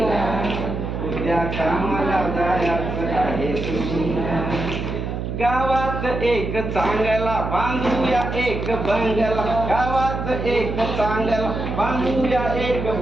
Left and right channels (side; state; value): right; noise; hum, 4 dB below the sound